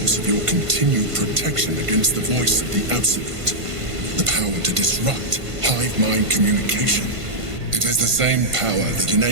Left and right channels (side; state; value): left; late; 1.5 ms